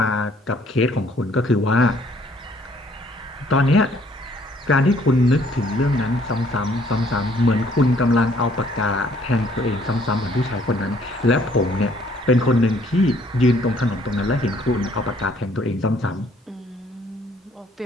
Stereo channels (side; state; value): both; normal; correlation 0.62